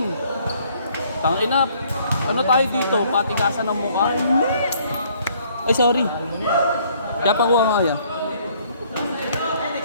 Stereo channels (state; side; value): inverted; both; correlation -0.63